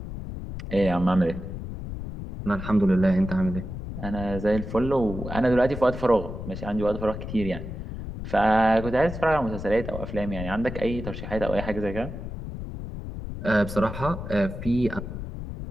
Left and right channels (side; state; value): left; noise; rumble, 8 dB below the sound